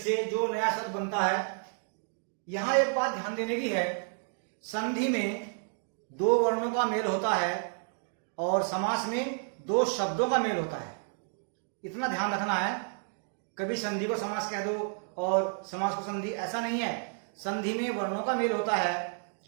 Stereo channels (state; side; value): silent; left; 57 dB below the other